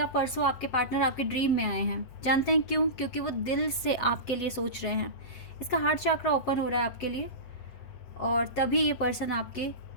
परसों आपके पार्टनर आपके ड्रीम में आए हैं। जानते हैं क्यों? क्योंकि वो दिल से आपके लिए सोच रहे हैं। इसका हार्ट चक्रा ओपन हो रहा है आपके लिए, और तभी ये पर्सन आपके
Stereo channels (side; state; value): right; late; 8.0 ms